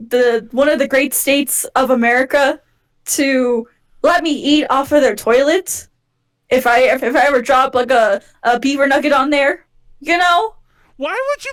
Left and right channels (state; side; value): identical; both; correlation 1.00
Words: one of the great states of America, to let me eat off of their toilet. If I ever drop a beaver nugget on there, Why would you